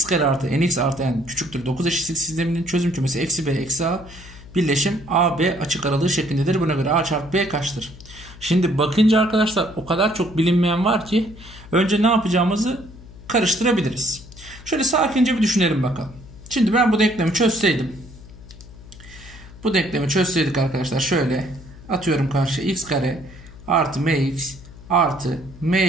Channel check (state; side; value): noise; left; hum, 18 dB below the sound